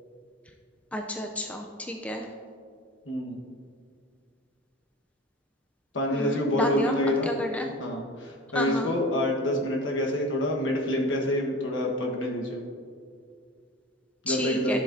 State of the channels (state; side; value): normal; both; correlation 0.37